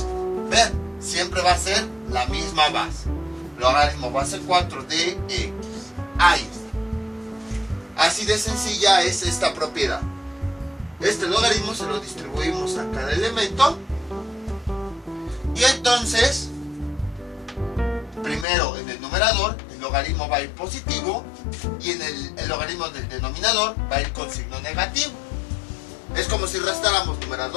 Vean, siempre va a ser la misma base. Logaritmo base 4 de x. Ahí está. Así de sencilla es esta propiedad. Este logaritmo se lo distribuimos a cada elemento. Y entonces, primero en el numerador, el logaritmo va a ir positivo. Y en el logaritmo del denominador va a ir con signo negativo. Es como si restáramos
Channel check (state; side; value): drops out; right; at 18.4 s